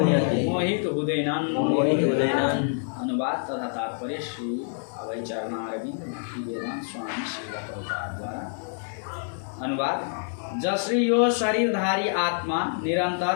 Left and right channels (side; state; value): right; silent; 61 dB below the other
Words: मोहित हुँदैनन्। अनुवाद तथा तात्पर्य श्री अभय चरणारविंद भक्ति वेदांत स्वामी श्री द्वारा। अनुवाद जसरी यो शरीरधारी आत्मा निरन्तर